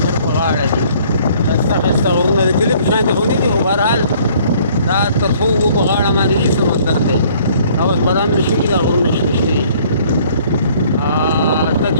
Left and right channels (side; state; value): both; inverted; correlation -0.58